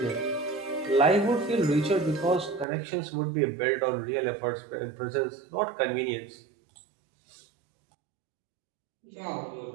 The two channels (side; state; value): left; drops out; at 2.7 s